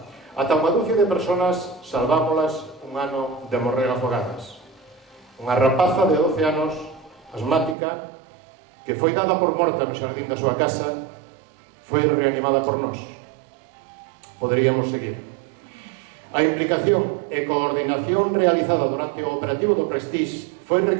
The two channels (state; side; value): drops out; left; at 7.8 s